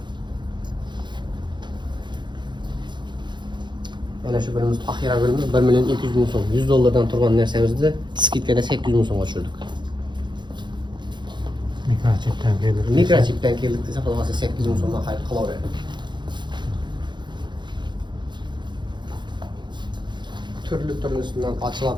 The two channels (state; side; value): late; left; 0.22 ms